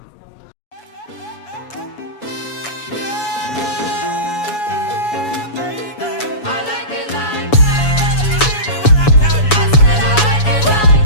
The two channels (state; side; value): late; right; 7.1 ms